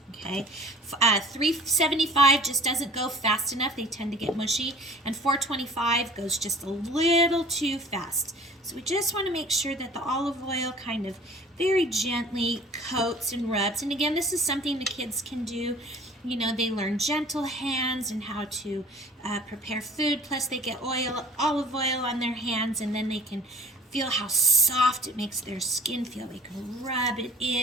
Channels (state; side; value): normal; both; correlation 0.47